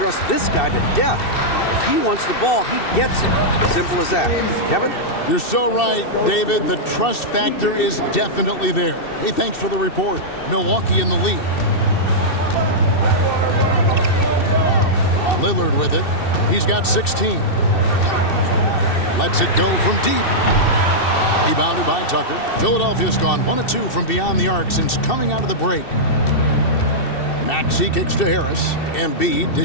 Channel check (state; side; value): late; right; 2.7 ms